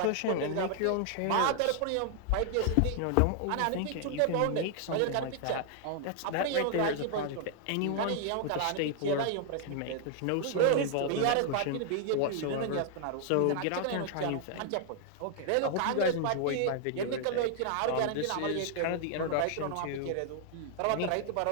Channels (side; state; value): both; different; correlation 0.00